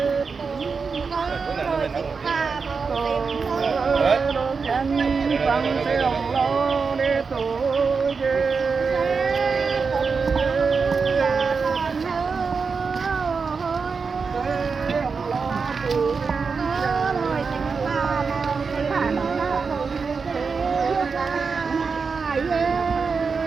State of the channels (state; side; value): quieter; left; 5.1 dB